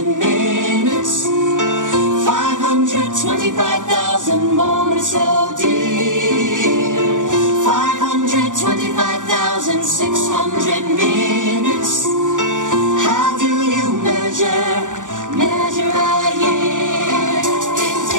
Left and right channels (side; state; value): left; late; 0.87 ms